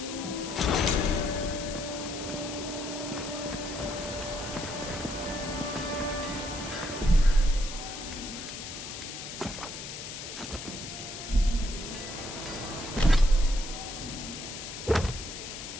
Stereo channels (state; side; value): noise; left; hiss, 8 dB below the sound